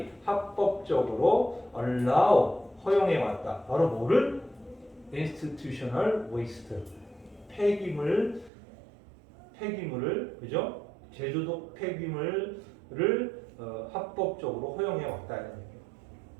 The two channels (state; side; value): drops out; left; at 8.5 s